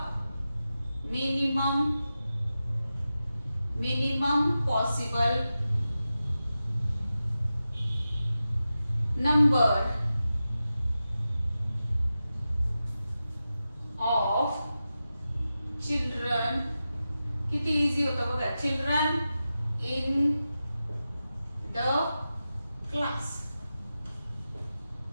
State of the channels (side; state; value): both; inverted; correlation -0.92